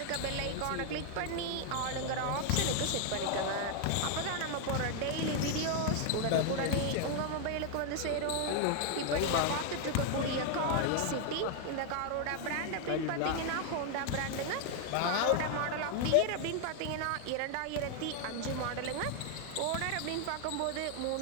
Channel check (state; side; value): different; both; correlation 0.00